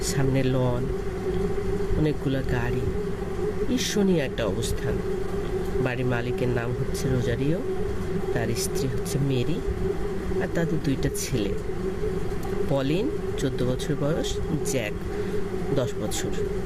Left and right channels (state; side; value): identical; both; correlation 1.00